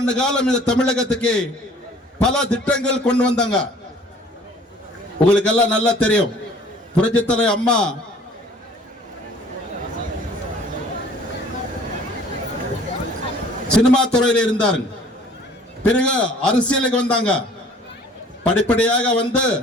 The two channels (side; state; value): both; normal; correlation 0.52